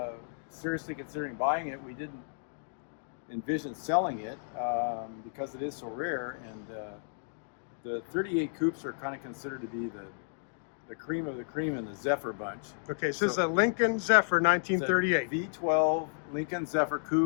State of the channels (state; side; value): silent; right; digital silence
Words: seriously considering buying it. We didn't envision selling it because it is so rare, and the 38 coupes are kind of considered to be the cream of the cream in the Zephyr bunch. Okay, so this is a Lincoln-Zephyr 1938. V12 Lincoln-Zephyr